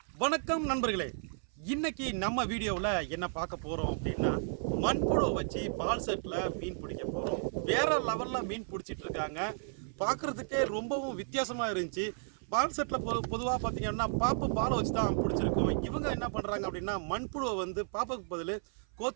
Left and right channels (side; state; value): left; silent; 55 dB below the other